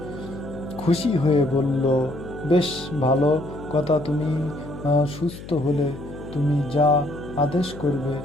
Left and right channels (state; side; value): noise; left; hum, 13 dB below the sound